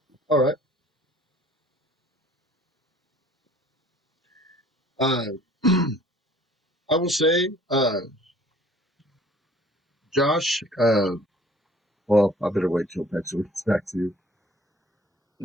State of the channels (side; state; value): both; normal; correlation 0.53